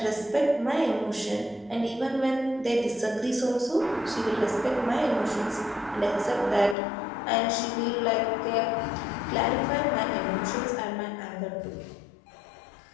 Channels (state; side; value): drops out; right; at 6.8 s